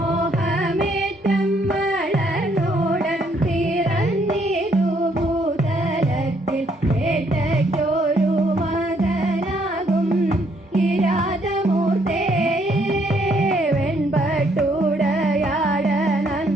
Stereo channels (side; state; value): both; normal; correlation 0.69